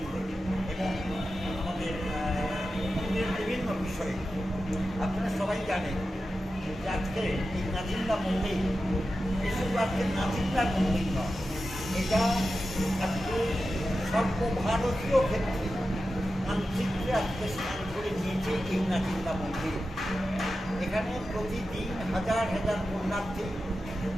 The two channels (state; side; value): normal; both; correlation 0.92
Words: এবং আমাদের মন্দিরের বিভিন্ন বিষয়ে। আপনারা সবাই জানেন যে আজকে এই নাচিন্দা মন্দির এসব আজকে নাচিন্দার মন্দির নয়, এটা আজকে সর্বভারতীয় ক্ষেত্রে মানচিত্রে আজকে স্থান করে নিয়েছে এই নাচিন্দা মন্দির। এখানে প্রতিদিন হাজার হাজার পুণ্যার্থী